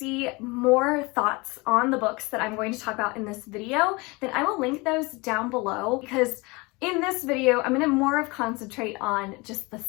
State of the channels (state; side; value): quieter; right; 25.5 dB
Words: more thoughts on the books that I'm going to talk about in this video, then I will link those down below, because in this video, I'm going to more of concentrate on just the